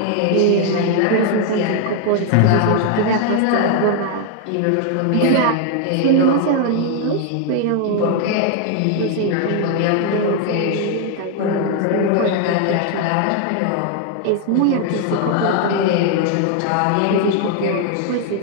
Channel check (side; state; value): both; different; correlation 0.00